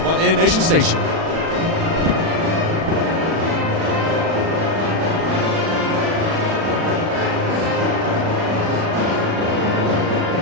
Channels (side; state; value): left; late; 36 ms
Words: on the Indian Nation Station.